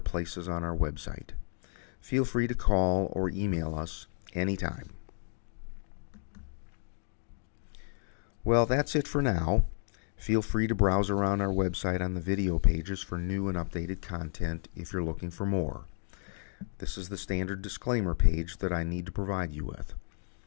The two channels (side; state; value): right; silent; digital silence